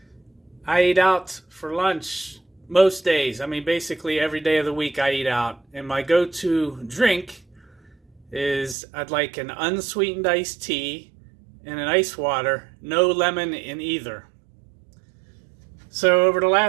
I eat out for lunch most days. I mean, basically every day of the week I eat out. And my go-to drink is I'd like an unsweetened iced tea and an ice water, no lemon in either. So over the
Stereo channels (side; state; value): left; drops out; at 8.8 s